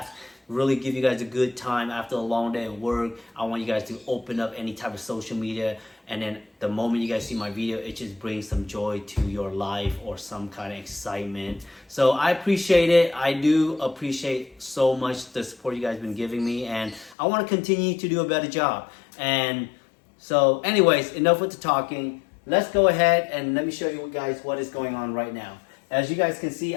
really give you guys a good time after a long day of work. I want you guys to open up any type of social media, and then the moment you guys see my video, it just brings some joy to your life or some kind of excitement. So I appreciate it. I do appreciate so much the support you guys been giving me, and I want to continue to do a better job. And so anyways, enough with the talking. Let's go ahead and let me show you guys what is going on right now. As you guys can see,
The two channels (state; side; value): drops out; right; at 17.2 s